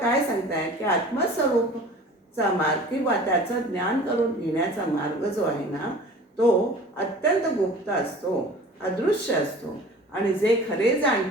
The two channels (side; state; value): both; normal; correlation 0.43